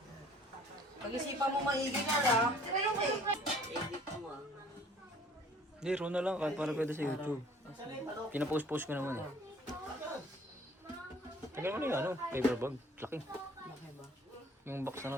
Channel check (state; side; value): normal; both; correlation 0.54